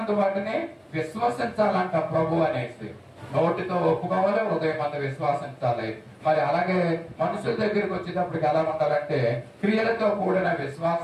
వాటిని విశ్వసించాలంట. ప్రభు అనేసి నోటితో ఒప్పుకోవాలి, హృదయమందు విశ్వసించాలి. మరి అలాగే మనుషుల దగ్గరికి వచ్చేటప్పటికి ఎలా ఉండాలంటే క్రియలతో కూడిన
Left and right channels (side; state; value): both; identical; correlation 1.00